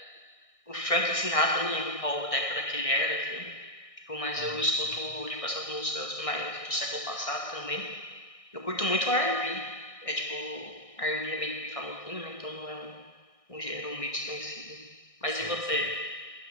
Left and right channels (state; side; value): late; right; 1.6 ms